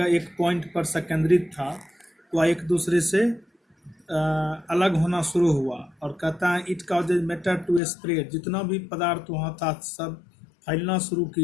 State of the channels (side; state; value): right; drops out; at 7.8 s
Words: एक पॉइंट पर संकेंद्रित था वह एक दूसरे से अलग होना शुरू हुआ। और कहता है it causes matter to spread, जितना भी पदार्थ वहाँ था सब फैलना शुरू